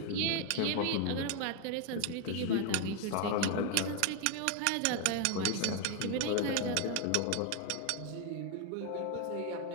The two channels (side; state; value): both; different; correlation 0.01